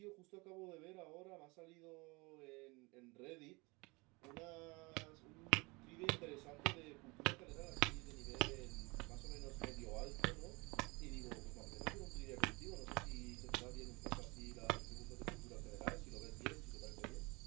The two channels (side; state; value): left; quieter; 26.0 dB